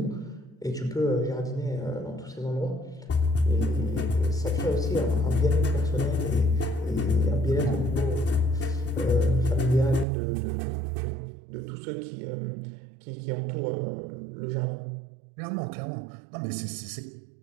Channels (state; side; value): drops out; left; at 10.1 s